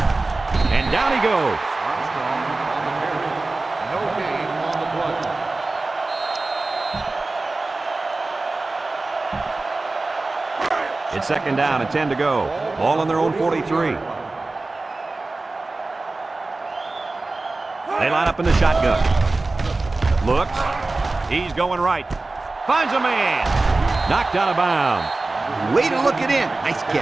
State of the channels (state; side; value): quieter; left; 3.3 dB